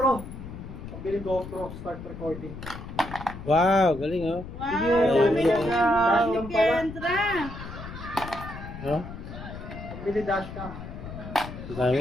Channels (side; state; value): left; noise; rumble, 11 dB below the sound